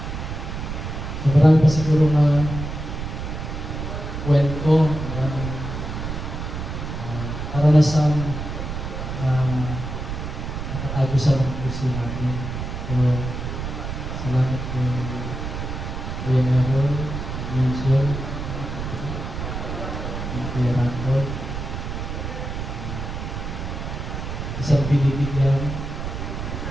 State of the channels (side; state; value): right; noise; rumble, 5 dB below the sound